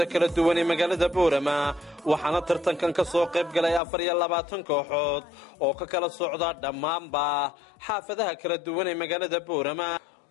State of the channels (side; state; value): right; drops out; at 3.8 s